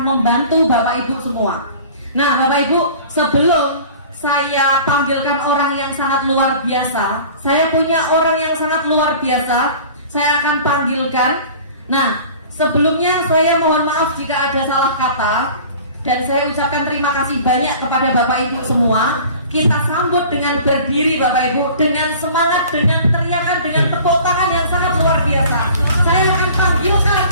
membantu Bapak Ibu semua. Nah, Bapak Ibu, sebelum saya panggilkan orang yang sangat luar biasa, saya punya orang yang sangat luar biasa. Saya akan panggilkan. Nah, Sebelumnya saya mohon maaf jika ada salah kata, dan saya ucapkan terima kasih banyak kepada Bapak Ibu semua. Kita sambut dengan berdiri Bapak Ibu, dengan semangat, dengan teriakan, dengan tepuk tangan yang sangat luar biasa. Saya akan panggilkan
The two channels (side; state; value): both; inverted; correlation -0.44